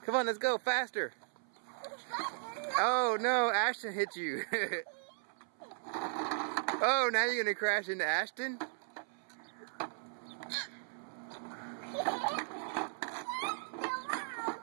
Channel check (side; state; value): left; silent; 53 dB below the other